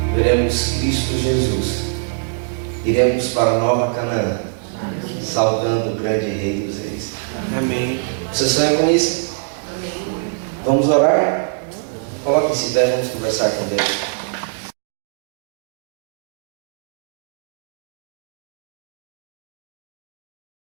veremos Cristo Jesus. Iremos para a Nova Canaã, saudando o grande Rei dos Reis. Amém. Você sonha com isso? Vamos orar? Coloque-se em pé, vamos conversar com Deus.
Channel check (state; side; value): silent; left; digital silence